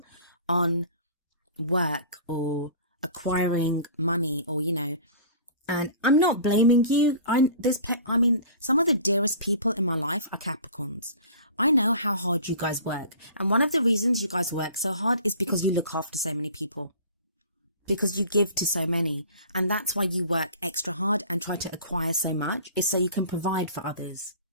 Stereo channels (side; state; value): both; inverted; correlation -0.43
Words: on work or acquiring money or, And I'm not blaming you. Some of the dearest people in my life are Capricorns. I know how hard you guys work. And one of the reasons you guys work so hard is because you look after so many people. Because you give to so many. And that's why you work extra hard and try to acquire so much, is so you can provide for others.